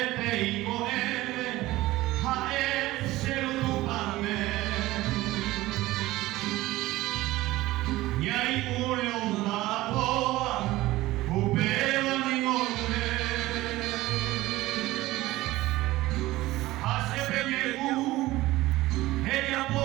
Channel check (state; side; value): quieter; left; 17.7 dB